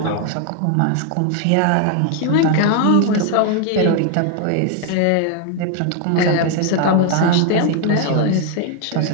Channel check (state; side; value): different; both; correlation 0.00